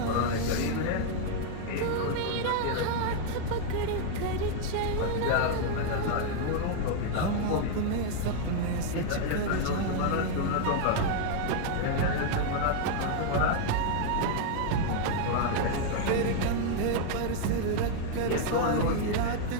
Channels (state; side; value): different; both; correlation 0.00